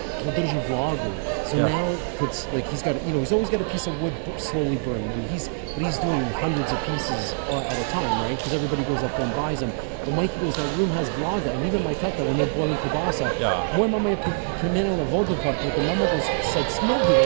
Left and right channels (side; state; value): left; silent; digital silence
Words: there's a vlogger. So now it's like he's got he's always got a piece of wood slowly burning. And he's doing hundreds of pieces at a time, right? Because everybody goes up and buys them. But Mikey goes, that room has vloga, and even my tata, when they're boiling kibasa, moja mama je primenila vodu pa the mama goes like smoked it,